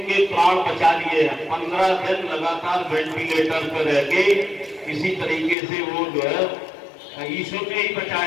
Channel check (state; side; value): drops out; right; at 5.6 s